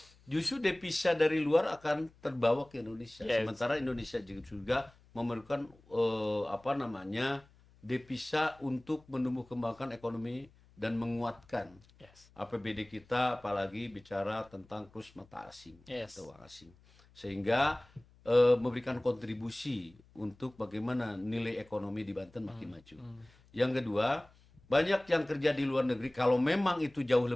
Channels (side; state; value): left; noise; hum, 28 dB below the sound